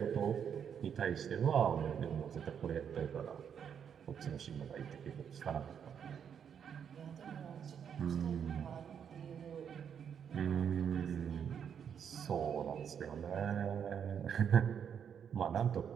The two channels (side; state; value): left; quieter; 7.9 dB